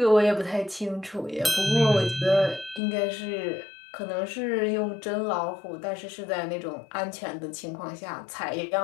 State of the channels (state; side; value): drops out; right; at 2.8 s